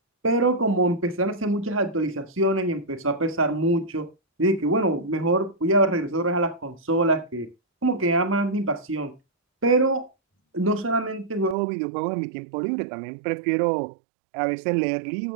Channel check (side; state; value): left; drops out; at 11.6 s